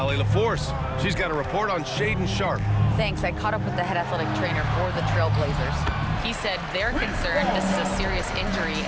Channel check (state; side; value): identical; both; correlation 1.00